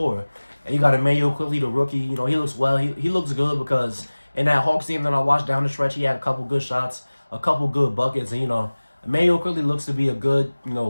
And you got Emmanuel Quickly, the rookie. He looks well. He looks good because in that Hawks game that I watched down the stretch, he had a couple good shots, a couple good buckets. And, Emmanuel Quickly looks to be a good,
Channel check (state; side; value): inverted; both; correlation -1.00